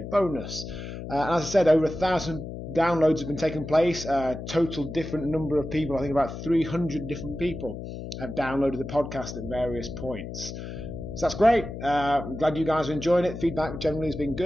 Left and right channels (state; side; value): noise; left; hum, 9 dB below the sound